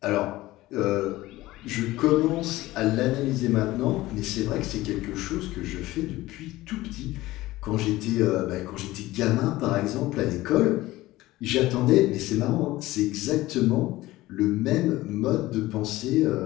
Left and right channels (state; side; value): quieter; right; 17.7 dB